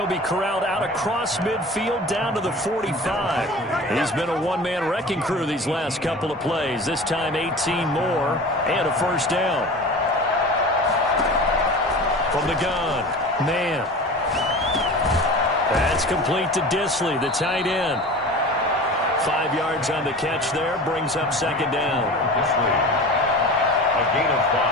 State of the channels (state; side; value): normal; both; correlation 0.36